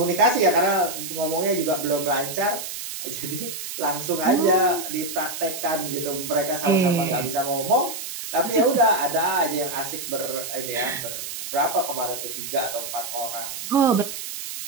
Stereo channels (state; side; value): noise; right; hiss, 7 dB below the sound